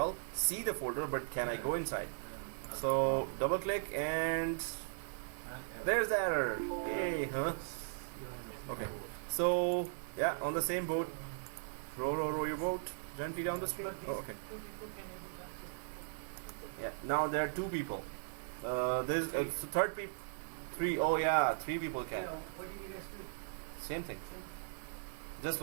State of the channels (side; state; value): left; silent; digital silence